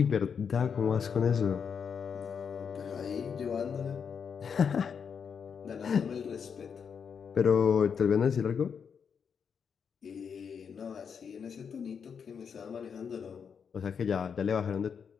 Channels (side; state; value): right; quieter; 6.7 dB